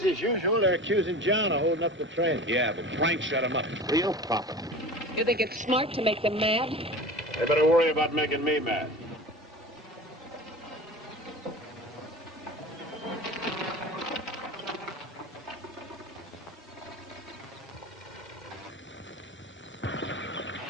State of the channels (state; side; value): normal; both; correlation 0.35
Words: as usual. They're accusing John of holding up the train. Yeah, but Frank shut him up. Real profit. You think it's smart to make them mad? They better worry about making me mad.